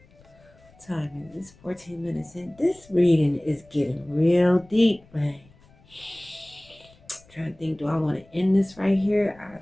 Time is 14 minutes in. This reading is getting real deep, man. Trying to think, do I want to end this right here? I'll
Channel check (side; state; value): left; noise; rumble, 28 dB below the sound